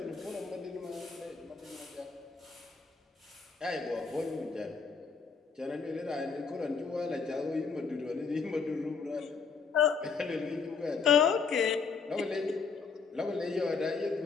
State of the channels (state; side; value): quieter; right; 5.3 dB